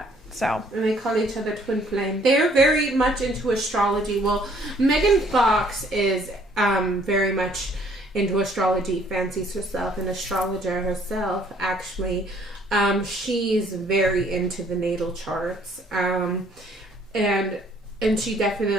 So. And they call each other twin flame. They're very much into astrology. Well, Megan Fox is very much into astrology, fancies herself an astrologer herself, actually. She's very into the natal charts. And she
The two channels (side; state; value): both; normal; correlation 0.62